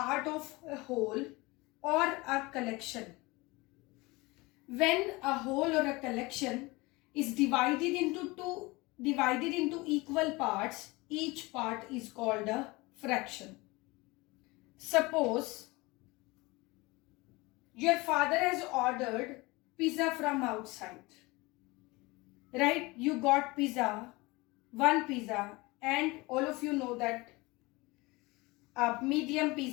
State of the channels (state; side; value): quieter; right; 23.2 dB